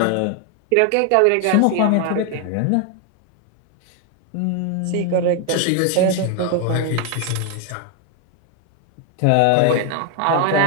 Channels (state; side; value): different; both; correlation 0.01